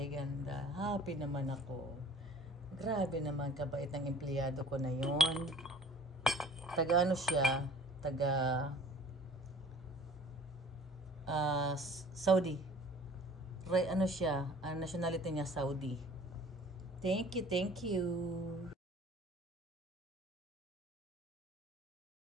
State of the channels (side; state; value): both; normal; correlation 0.49